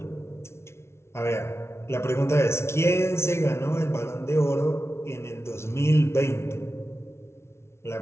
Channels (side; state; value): right; late; 0.13 ms